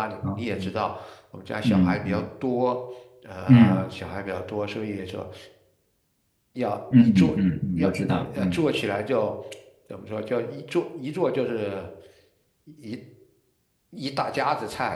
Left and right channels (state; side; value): identical; both; correlation 1.00